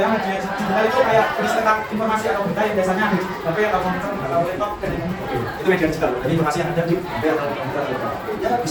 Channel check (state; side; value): identical; both; correlation 1.00